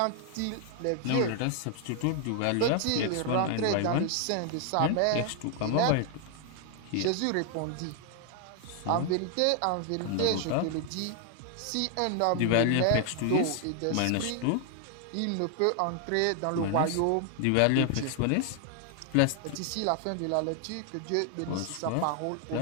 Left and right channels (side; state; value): both; different; correlation 0.00